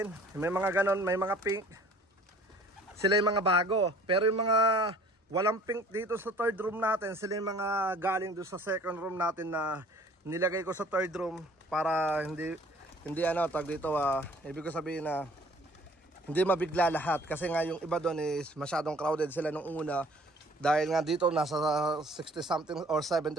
may mga ganon, may mga pink. Sila yung mga bago. Pero yung mga walang pink dito sa third room natin, sila yung mga galing doon sa second room natin na nilagay ko sa third room para hindi tag dito, ibig ko sabihin na hindi mabigla lahat kasi nga yung iba doon is masyadong crowded sila nung una dahil nga dito nasa 60 something or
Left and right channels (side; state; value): both; normal; correlation 0.53